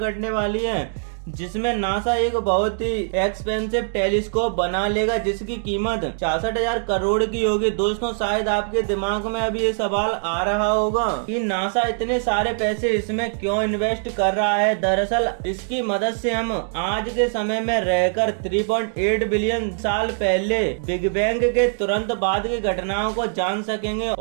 घटने वाली है, जिसमें नासा एक बहुत ही एक्सपेंसिव टेलीस्कोप बना लेगा जिसकी कीमत 66,000 करोड़ की होगी। दोस्तों शायद आपके दिमाग में अभी ये सवाल आ रहा होगा कि नासा इतने सारे पैसे इसमें क्यों इन्वेस्ट कर रहा है। दरअसल इसकी मदद से हम आज के समय में रहकर 3.8 बिलियन साल पहले बिग बैंग के तुरंत बाद की घटनाओं को जान सकेंगे।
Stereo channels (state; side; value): silent; left; digital silence